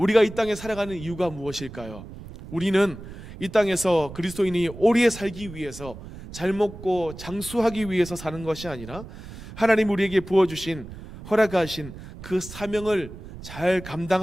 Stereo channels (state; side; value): noise; right; rumble, 14 dB below the sound